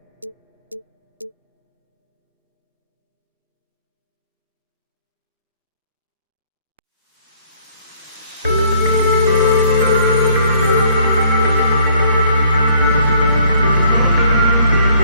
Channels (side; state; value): both; inverted; correlation -0.61